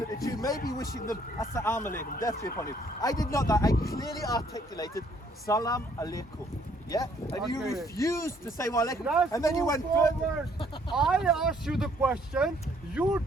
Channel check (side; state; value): both; normal; correlation 0.64